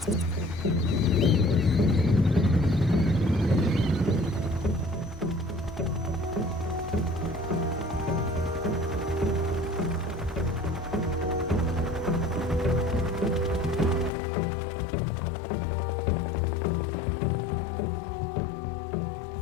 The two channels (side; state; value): right; drops out; at 14.1 s